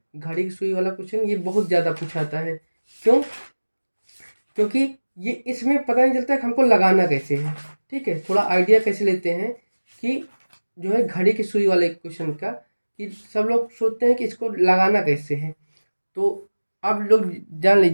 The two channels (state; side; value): inverted; both; correlation -1.00